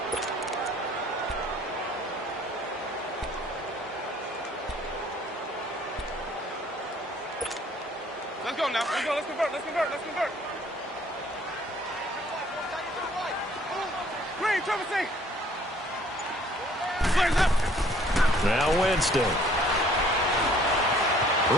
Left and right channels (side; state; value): both; normal; correlation 0.58